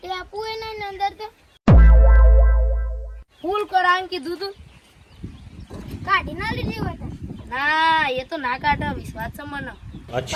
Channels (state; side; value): identical; both; correlation 1.00